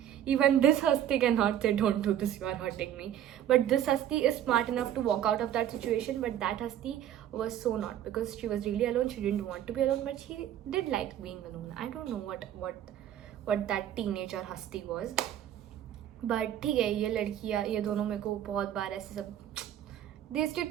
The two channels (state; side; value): quieter; left; 11.0 dB